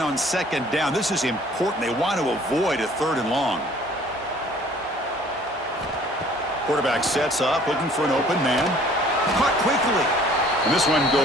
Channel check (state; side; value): normal; both; correlation 0.54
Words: on 2nd down, this is important. They want to avoid a 3rd and long. Quarterback sets up, looking for an open man. Caught quickly. And this one